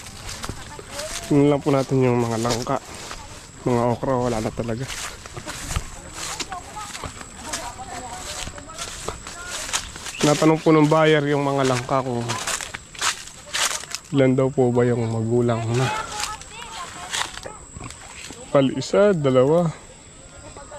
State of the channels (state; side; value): identical; both; correlation 1.00